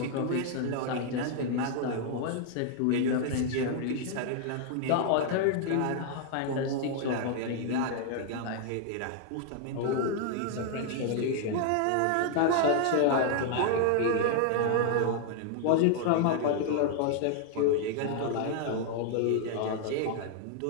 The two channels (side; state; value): both; different; correlation 0.00